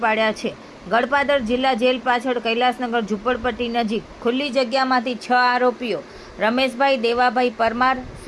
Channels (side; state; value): both; identical; correlation 1.00